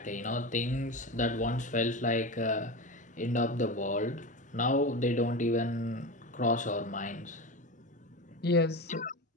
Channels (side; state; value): both; normal; correlation 0.24